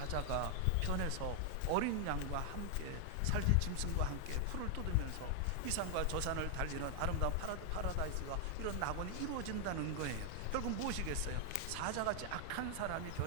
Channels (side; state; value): both; different; correlation 0.00